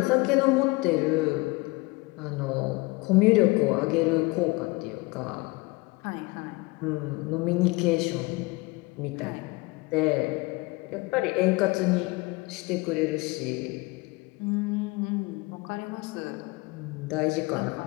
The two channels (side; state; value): right; quieter; 24.3 dB